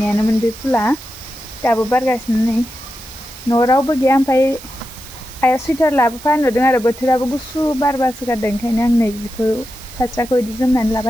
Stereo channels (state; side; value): noise; right; hiss, 18 dB below the sound